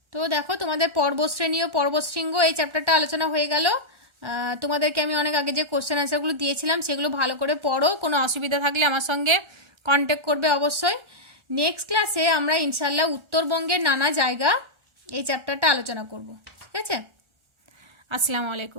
তো দেখো, তোমাদের পর্বতশ্রেণী ও পর্বতশৃঙ্গ এই চ্যাপ্টারটা আলোচনা হয়ে গেল। তোমাদেরকে আমি অনেক আগে যে কোশ্চেন আনসারগুলো দিয়েছিলাম সেগুলো ভালো করে পড়ো। কোনো অসুবিধা থাকলে আমার সঙ্গে কন্ট্যাক্ট করবে অবশ্যই। নেক্সট ক্লাসে আমরা ইনশাল্লাহ উত্তরবঙ্গের নানা জায়গা এই চ্যাপ্টারটা আলোচনা করব। ঠিক আছে, আসসালামু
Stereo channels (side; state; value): left; late; 1.4 ms